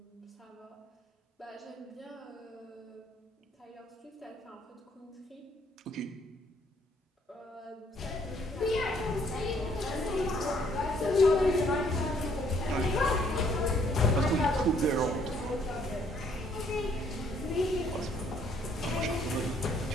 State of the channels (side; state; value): both; normal; correlation 0.65